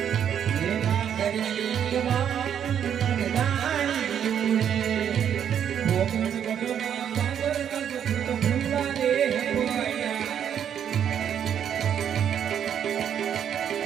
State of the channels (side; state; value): left; quieter; 9.0 dB